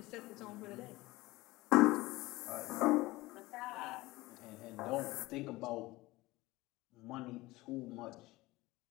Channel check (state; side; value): quieter; right; 19.8 dB